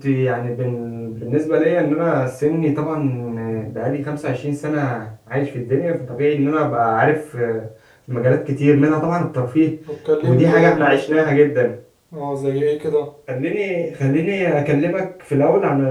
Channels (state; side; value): identical; both; correlation 1.00